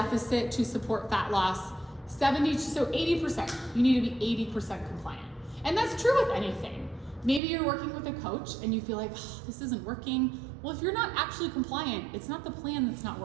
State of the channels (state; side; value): drops out; left; at 7.4 s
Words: to support fat loss? 80%. You need to be 80% compliant. And that's true with anything. Maybe you're working with a coach and you feel like, oh, this isn't working. Well, if you're not actually compliant, it's not the plan that's not